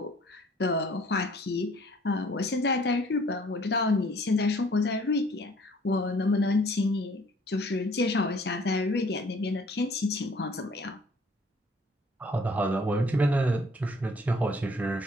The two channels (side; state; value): both; normal; correlation 0.56